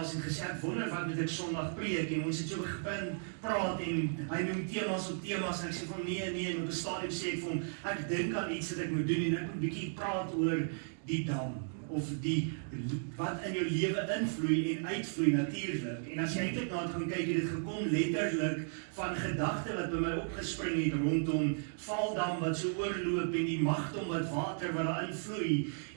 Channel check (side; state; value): left; silent; digital silence